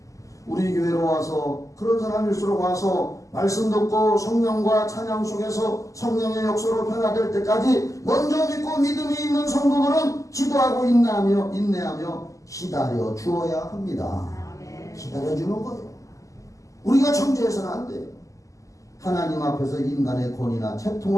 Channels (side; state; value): right; late; 0.16 ms